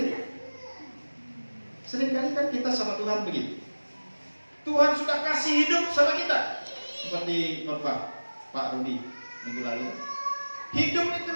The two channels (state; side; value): inverted; both; correlation -1.00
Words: Seringkali kan kita sama Tuhan begitu. Tuhan sudah kasih hidup sama kita, seperti khotbah Pak Rudi minggu lalu. Hidup itu